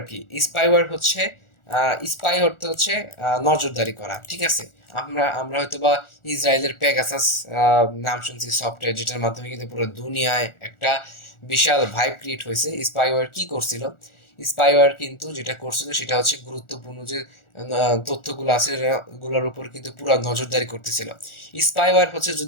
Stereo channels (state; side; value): late; right; 1.4 ms